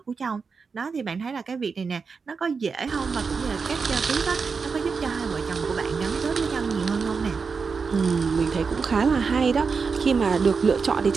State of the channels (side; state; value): left; quieter; 5.2 dB